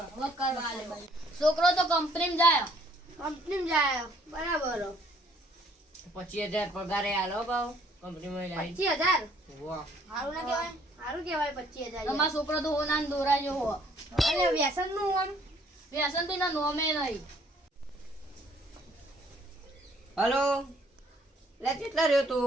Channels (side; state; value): both; normal; correlation 0.62